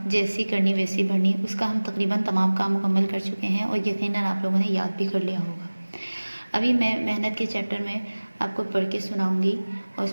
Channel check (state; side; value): inverted; both; correlation -1.00